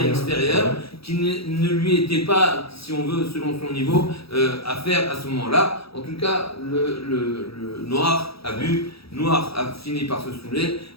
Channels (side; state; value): right; late; 0.77 ms